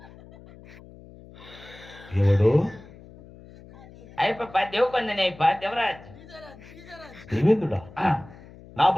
ఎవడు అయిపో దేవకొందని అయిపో దేవరాజు దేవేంద్రుడా నా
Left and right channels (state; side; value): noise; left; hum, 20 dB below the sound